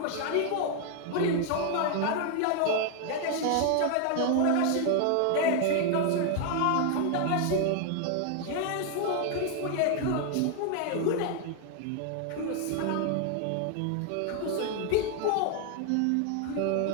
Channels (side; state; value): both; different; correlation 0.00